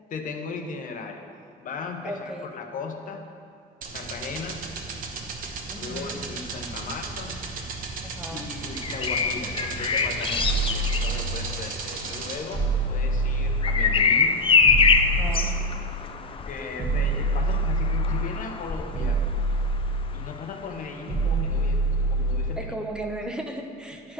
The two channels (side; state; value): both; normal; correlation 0.04